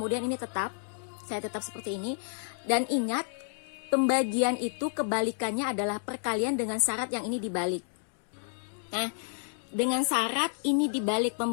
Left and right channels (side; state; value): right; silent; digital silence